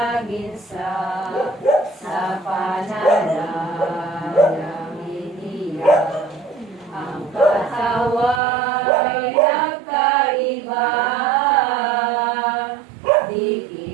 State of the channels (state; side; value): drops out; left; at 8.4 s